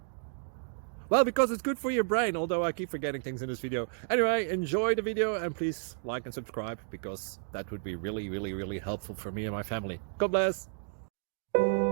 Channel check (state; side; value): silent; left; digital silence